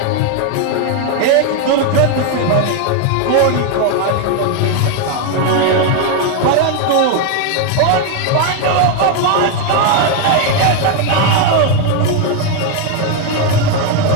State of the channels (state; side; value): different; both; correlation 0.01